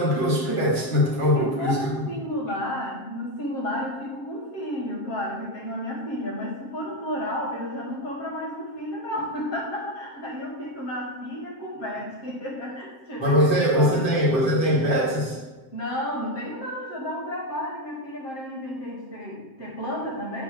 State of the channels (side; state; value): right; late; 7.6 ms